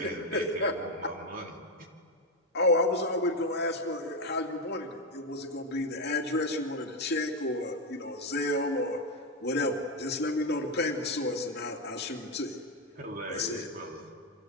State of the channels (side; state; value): both; normal; correlation 0.09